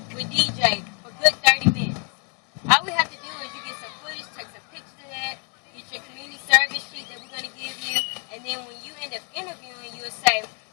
with DJ for good 30 minutes. All we have to do is you get some footage, take some pictures of that, get your community service sheet that we're going to give you, and then when you end up interviewing, you'll say,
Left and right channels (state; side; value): quieter; right; 36.0 dB